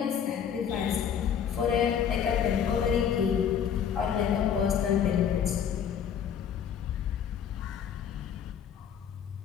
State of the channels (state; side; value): quieter; right; 8.3 dB